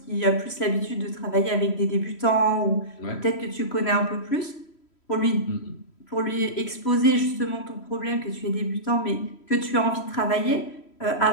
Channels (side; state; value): right; late; 3.1 ms